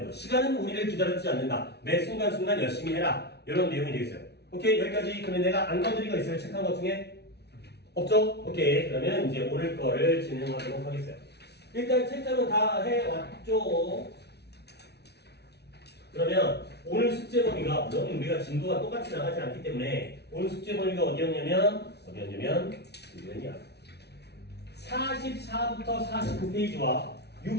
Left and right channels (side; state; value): right; late; 0.49 ms